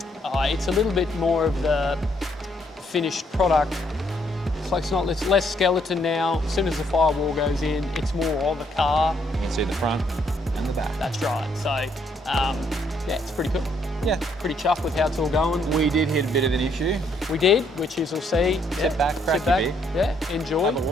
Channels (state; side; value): normal; both; correlation 0.71